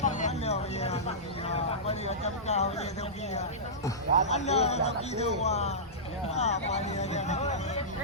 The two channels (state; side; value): normal; both; correlation -0.16